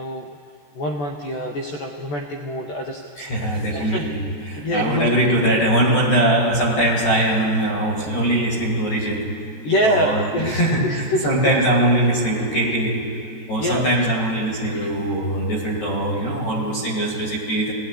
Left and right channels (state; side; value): late; right; 13 ms